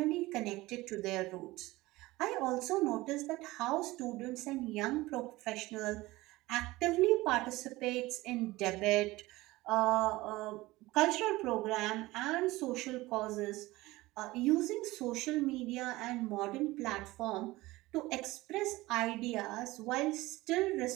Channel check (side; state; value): left; quieter; 19.4 dB